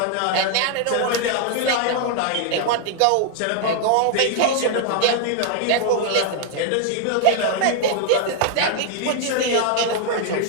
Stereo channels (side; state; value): both; different; correlation 0.00